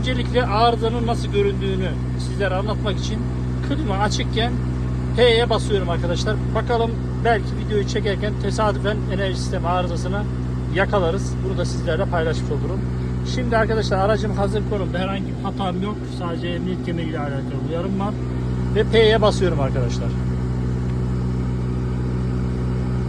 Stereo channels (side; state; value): both; identical; correlation 1.00